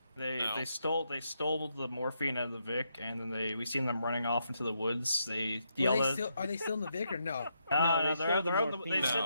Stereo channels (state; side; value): inverted; both; correlation -0.79